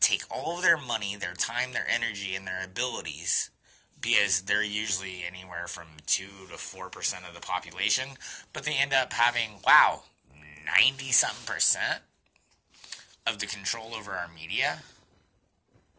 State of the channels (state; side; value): identical; both; correlation 1.00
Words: take all of their money, their time, their energy, and their abilities, because they're usually anywhere from 2 to 4% of the population, but they end up having, 90-something% of the control over our media?